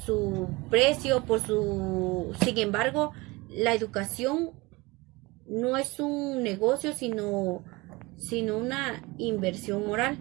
precio, sin embargo, la educación no es un negocio, sino una inversión moral.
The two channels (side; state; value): left; quieter; 23.3 dB